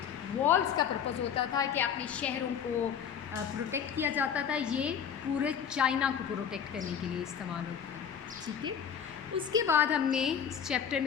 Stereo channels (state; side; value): quieter; right; 7.9 dB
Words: वॉल्स का पर्पज़ होता था कि अपने शहरों को प्रोटेक्ट किया जाता था, ये पूरे चाइना को प्रोटेक्ट करने के लिए इस्तेमाल होता है। ठीक है, उसके बाद हमने इस चैप्टर